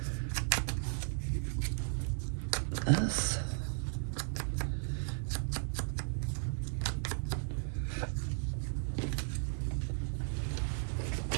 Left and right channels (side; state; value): left; silent; digital silence